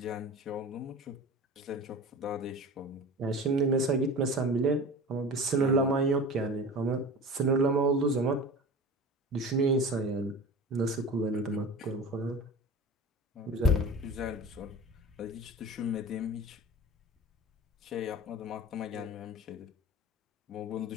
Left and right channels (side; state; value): both; normal; correlation 0.35